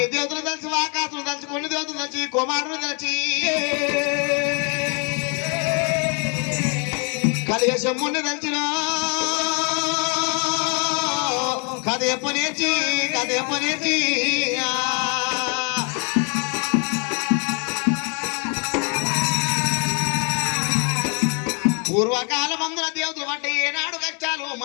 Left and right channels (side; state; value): right; quieter; 37.5 dB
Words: దేవతలు తెలిసి ఆకాశులు తెలిసి కొన్ని దేవతలు తెలిసి కుమారులు తెలిసి కలియశమ్ముని తెలిసిన కథ ఎప్పనేర్చి పూర్వకాల మందుల దేవతలు అంటే ఏనాడు కష్టాలు